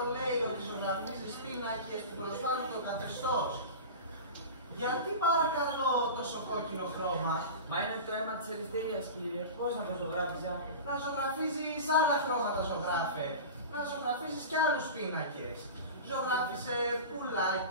λέει ότι ζωγραφίζεις πίνακες που προσφέρουν το καθεστώς. Γιατί παρακαλώ τόσο κόκκινο χρώμα? Μα είναι το αίμα της ελευθερίας, κύριε. Πώς να το ζωγράφιζα? Να ζωγραφίζεις άλλα χρώματα, ζωγράφε. Να ζωγραφίζεις κι άλλους πίνακες. Ζωγράφισε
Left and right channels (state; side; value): inverted; both; correlation -0.31